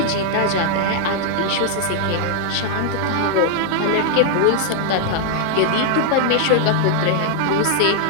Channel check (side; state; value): both; different; correlation -0.01